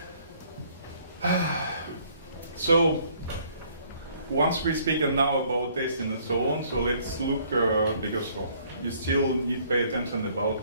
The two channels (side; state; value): both; inverted; correlation -0.61